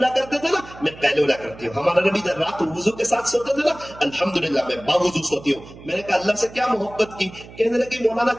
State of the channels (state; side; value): noise; right; hum, 18 dB below the sound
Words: کرتے تھے نا, میں قیلولہ کرتی ہوں. ہمارے نبی جب رات وضو کے ساتھ سوتے تھے نا الحمدللہ میں باوضو سوتی ہوں. میں نے کہا اللہ سے کیا محبت کی؟ کہنے لگی مولانا